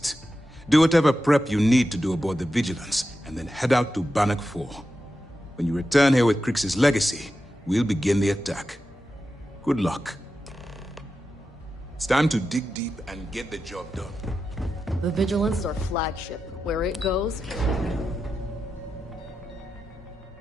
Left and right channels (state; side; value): normal; both; correlation 0.90